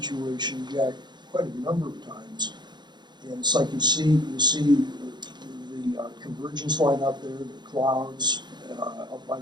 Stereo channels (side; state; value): left; late; 0.21 ms